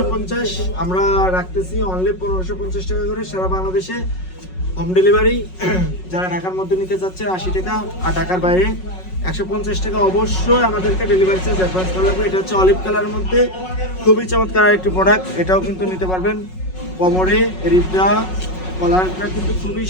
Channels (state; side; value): late; right; 5.4 ms